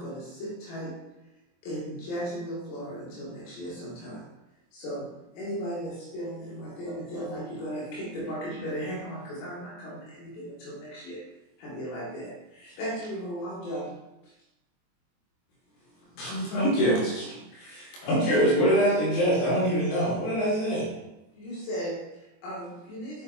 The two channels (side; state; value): right; late; 23 ms